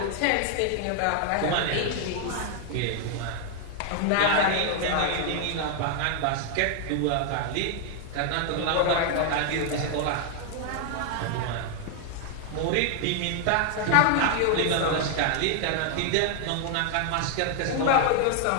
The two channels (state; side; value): different; both; correlation 0.00